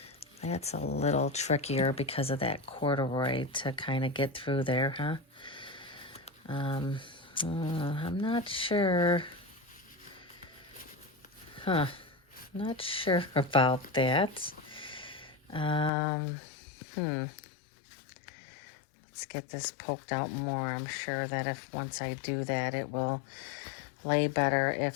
That's a little trickier because of that corduroy to kind of get through there, huh? I'm not sure. Not sure about that. Let's get this poked out more. I'm sure that if once I do that, it will lay better.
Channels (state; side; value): drops out; right; at 15.9 s